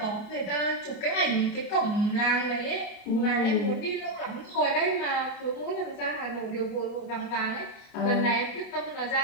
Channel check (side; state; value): right; late; 29 ms